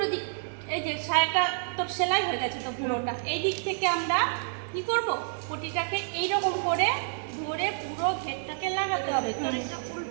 দিক, এই যে শাড়িটা তোর সেলাই হয়ে গেছে তো পুরোটা, এই দিক থেকে আমরা কি করব, পটিটাকে এইরকম করে ধরে পুরো ঘেরটাকে লাগাতে হবে। তোর এটা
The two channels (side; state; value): left; silent; digital silence